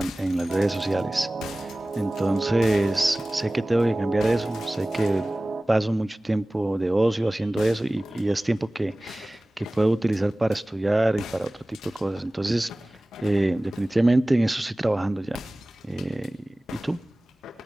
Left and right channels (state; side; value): normal; both; correlation 0.98